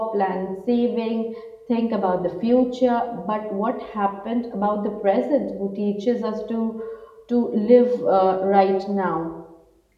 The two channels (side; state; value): both; identical; correlation 1.00